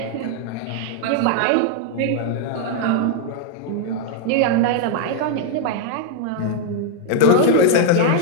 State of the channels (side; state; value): both; different; correlation 0.00